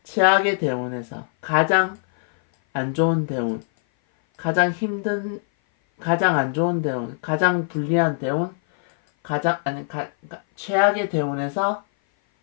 최악의 대운에서 가장 안 좋은 대운, 가장 안 좋은 대운, 가장 불리한 대운, 최악의 대운에서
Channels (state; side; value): silent; right; 57 dB below the other